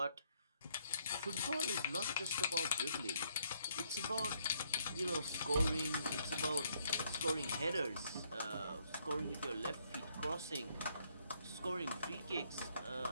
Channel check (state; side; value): inverted; both; correlation -0.70